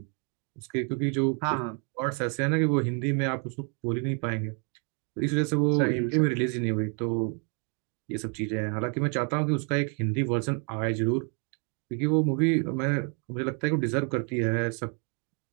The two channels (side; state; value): left; quieter; 38.4 dB